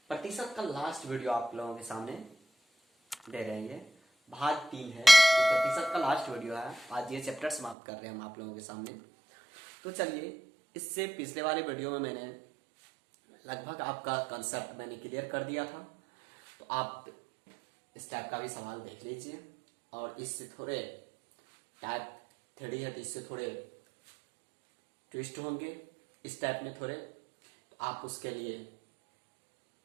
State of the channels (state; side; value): drops out; left; at 7.8 s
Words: प्रतिशत का लास्ट वीडियो आप लोगों के सामने दे रहे हैं। भाग 3 है, ये प्रतिशत का लास्ट वीडियो है। आज ये चैप्टर समाप्त कर रहे हैं हम आप लोगों के सामने। तो चलिए, इससे पिछले वाले वीडियो में मैंने लगभग आपका कंसेप्ट मैंने क्लियर कर दिया था। तो आप इस टाइप का भी सवाल देख लीजिए, और इससे थोड़े टाइप 3 है तो इससे थोड़े ट्विस्ट होंगे इस टाइप में थोड़े। तो आप उसके लिए